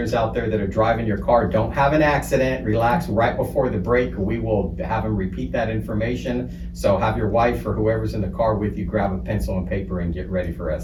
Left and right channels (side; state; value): both; identical; correlation 1.00